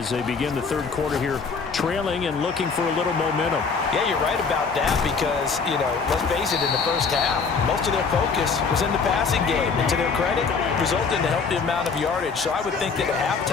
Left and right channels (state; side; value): quieter; right; 5.1 dB